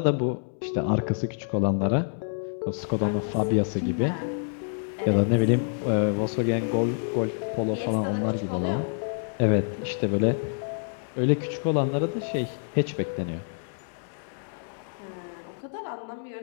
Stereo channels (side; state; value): right; silent; 60 dB below the other